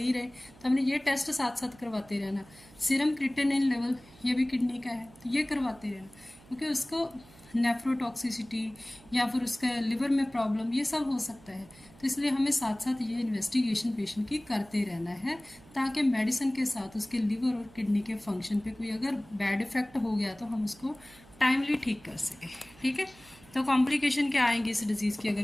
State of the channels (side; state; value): right; noise; hum, 24 dB below the sound